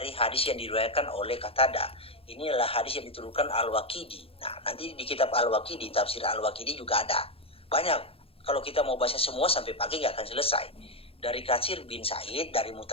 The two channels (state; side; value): late; right; 0.27 ms